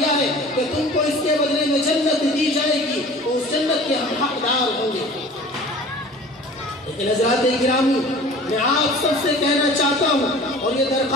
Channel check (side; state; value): both; normal; correlation 0.44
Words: ہے کہ تم کو اس کے بدلے میں جنت دی جائے گی تو اس جنت کے ہم حقدار ہوں گے۔ لیکن حضرات گرامی، میں آپ سب سے کہنا چاہتا ہوں اور یہ